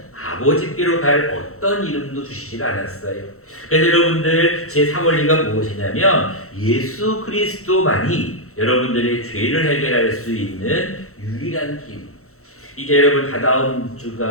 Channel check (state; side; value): late; right; 0.64 ms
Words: 아버지께로 갈 어떤 이름도 주시지 않았어요. 그래서 여러분들, 제3원리가 무엇이냐면 예수 그리스도만이 여러분들의 죄를 해결할 수 있는 유일한 길. 이제 여러분, 다다음